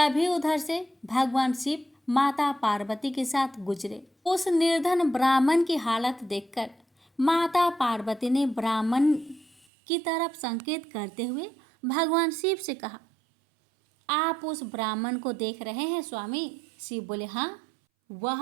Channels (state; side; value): drops out; left; at 9.7 s